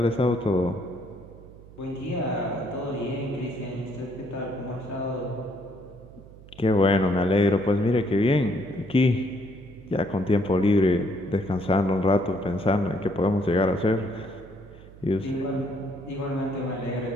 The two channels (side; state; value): right; noise; hum, 20 dB below the sound